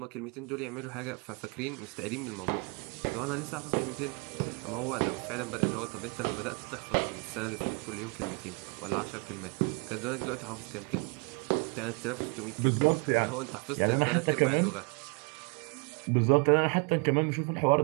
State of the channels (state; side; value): quieter; left; 33.2 dB